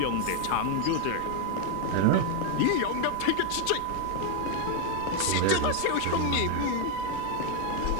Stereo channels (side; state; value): both; different; correlation 0.00